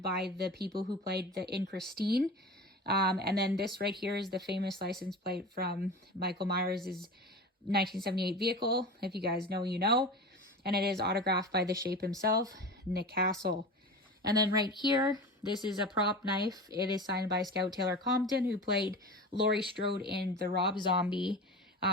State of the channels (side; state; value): both; normal; correlation 0.31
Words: by the people who played in Christine. And then this right here is the famous license plate from Michael Myers' 1978 vehicle. If you guys know, you know. And it is autographed by the Shape himself, Nick Castle. And then right here, this is a prop knife. It is signed by Scout Taylor Compton, who played Laurie Strode in the Rob Zombie